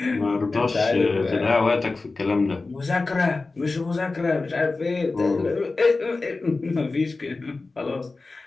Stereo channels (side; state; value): right; quieter; 3.6 dB